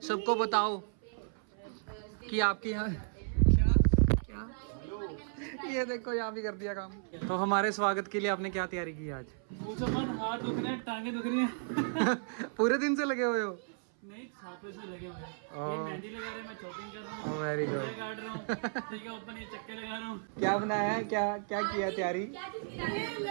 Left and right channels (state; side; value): silent; left; 55 dB below the other